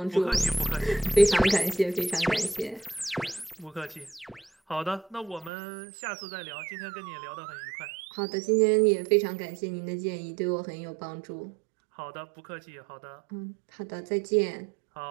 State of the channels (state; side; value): drops out; left; at 5.5 s